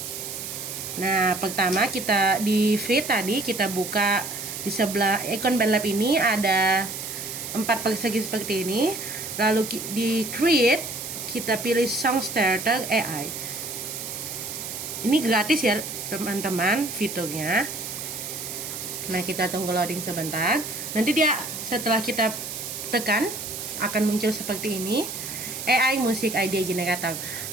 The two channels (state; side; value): noise; right; hiss, 7 dB below the sound